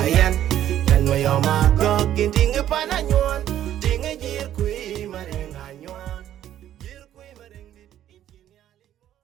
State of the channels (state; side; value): quieter; left; 11.6 dB